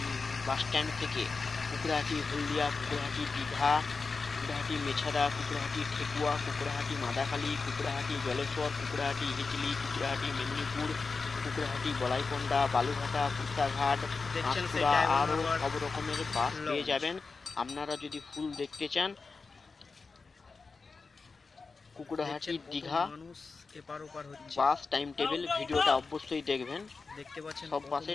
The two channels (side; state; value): right; quieter; 4.4 dB